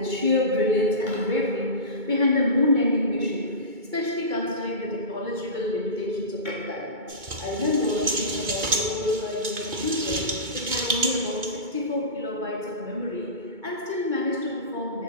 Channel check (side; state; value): left; late; 2.2 ms